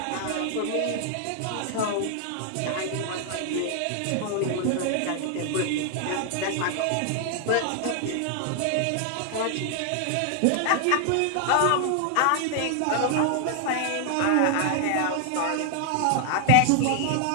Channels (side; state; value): both; different; correlation 0.00